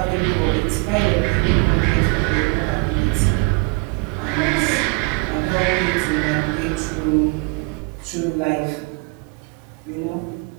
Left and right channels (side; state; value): left; quieter; 30.4 dB